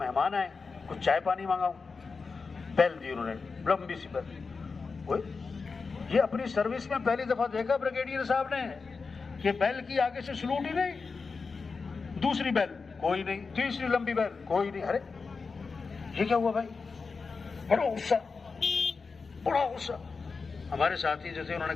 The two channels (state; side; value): quieter; right; 4.6 dB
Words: मेहमान आए, कुछ चाय पानी मांगाऊं, बेल दी उन्होंने, लंबी सी बेल। ये अपनी सर्विस में पहली दफा देखा ब्रिगेडियर साहब ने कि बेल की आगे से सलूट ही नहीं, दूसरी बेल कोई नहीं, तीसरी लंबी बेल कोई नहीं। अरे ये क्या हुआ भाई? बड़ा गुस्सा, बड़ा गुस्सा। हमारे साथी जो थे उन्होंने